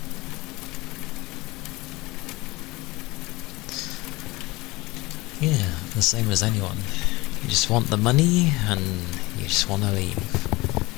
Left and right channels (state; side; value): quieter; right; 21.7 dB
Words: Yeah, the same as anyone. You just want the money and you just want to leave.